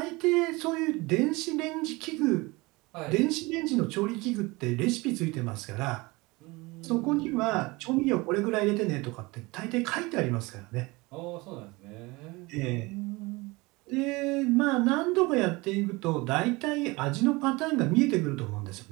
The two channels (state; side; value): quieter; left; 23.6 dB